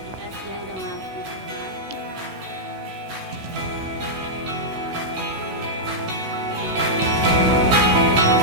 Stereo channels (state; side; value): late; left; 16 ms